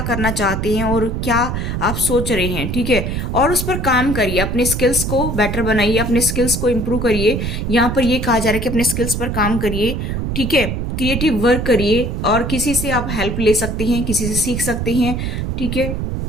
करना चाहते हैं और क्या आप सोच रहे हैं। ठीक है, और उस पर काम करिए, अपने स्किल्स को बेटर बनाइए, अपने स्किल्स को इम्प्रूव करिए। यहाँ पर यह कहा जा रहा है कि अपने स्किल्स पर काम करिए। ठीक है, क्रिएटिव वर्क करिए और किसी से आप हेल्प ले सकते हैं, किसी से सीख सकते हैं। ठीक है,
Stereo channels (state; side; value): noise; right; rumble, 2 dB below the sound